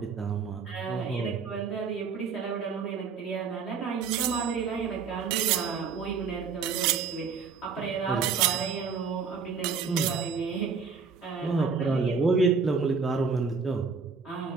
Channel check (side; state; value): left; quieter; 5.5 dB